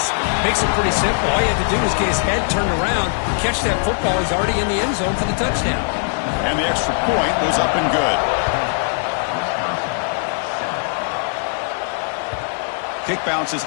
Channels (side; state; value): right; silent; digital silence